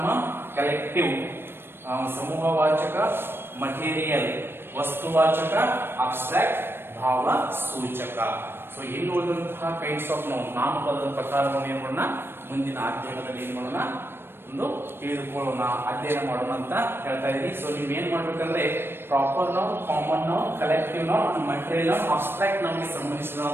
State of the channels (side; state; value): left; late; 0.11 ms